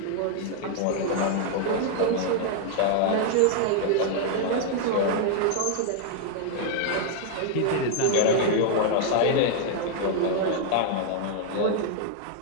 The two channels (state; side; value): different; both; correlation 0.00